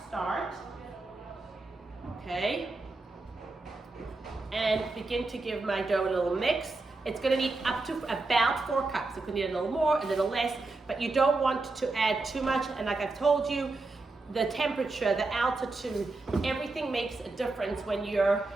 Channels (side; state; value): left; quieter; 3.4 dB